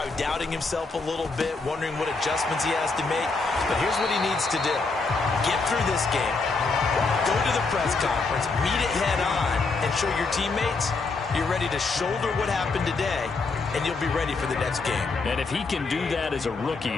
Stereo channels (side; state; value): right; quieter; 4.0 dB